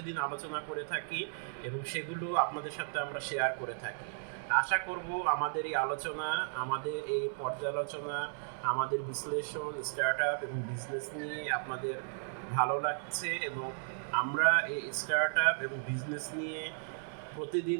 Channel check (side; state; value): left; silent; 55 dB below the other